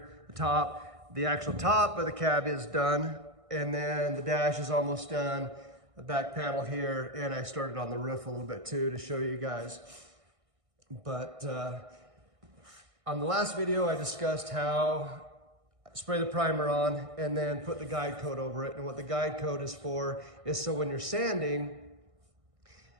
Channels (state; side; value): late; left; 1.6 ms